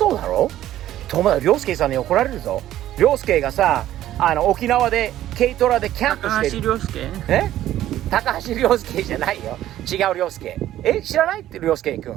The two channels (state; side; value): quieter; left; 13.1 dB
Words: だろ。涼介さんに怒られるぞ。涼介がさ、沖縄で軽トラでキャンプしてる。高橋涼介？高橋涼介じゃないよ。違う涼介。知らないって涼介く